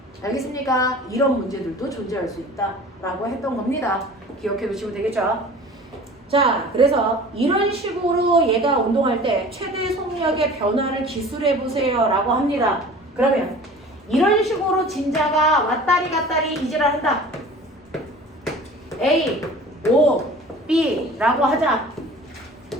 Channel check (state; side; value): normal; both; correlation 0.43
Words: 알겠습니까? 이런 문제들도 존재할 수 있다라고 했던 겁니다. 기억해 두시면 되겠죠? 자, 그래서 이런 식으로 얘가 운동할 때 최대 속력의 변화를 기술해 보세요 라고 합니다. 그러면 이런 식으로 진자가 왔다리 갔다리 이질을 한다. A, O, B 라고 하자.